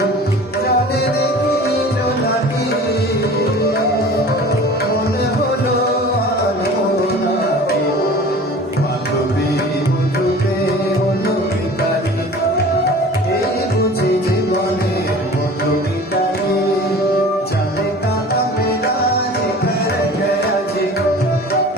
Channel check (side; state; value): both; normal; correlation 0.42